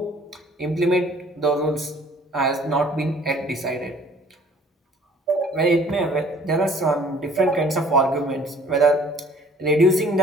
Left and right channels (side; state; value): both; normal; correlation 0.55